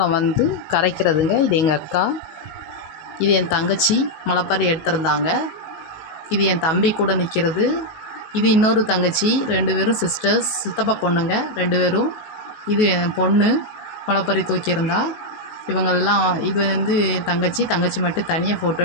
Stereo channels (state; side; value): late; right; 19 ms